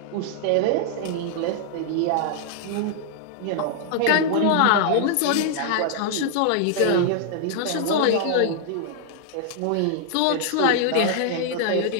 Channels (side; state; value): both; different; correlation -0.01